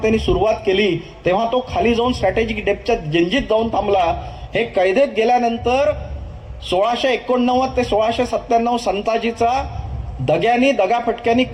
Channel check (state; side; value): identical; both; correlation 1.00